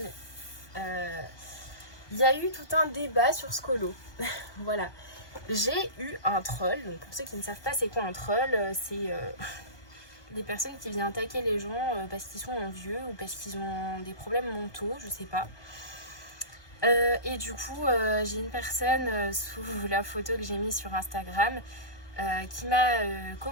il y a eu tout un débat sur ce colo. Voilà. J'ai eu un troll, donc pour ceux qui ne savent pas c'est quoi un troll, c'est des personnes qui viennent attaquer les gens parce qu'ils sont vieux ou parce qu'ils ont des problèmes mentaux, je sais pas. Et du coup, j'ai une personne sous la photo que j'ai mise sur Instagram qui m'a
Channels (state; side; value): late; right; 1.2 ms